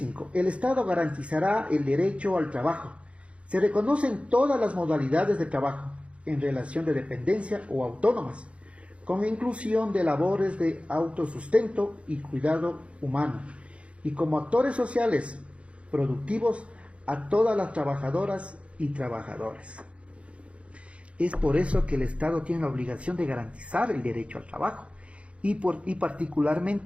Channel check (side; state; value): left; late; 0.061 ms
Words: El Estado garantizará el derecho al trabajo. Se reconocen todas las modalidades de trabajo en relación de dependencia o autónomas, con inclusión de labores de autosustento y cuidado humano, y como actores sociales productivos a todas las trabajadoras y trabajadores. Es por eso que el Estado tiene la obligación de garantizar el derecho al trabajo y